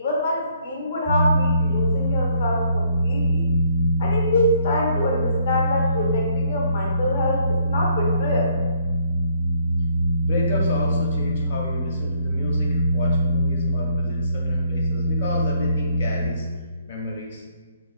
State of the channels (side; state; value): both; inverted; correlation -0.68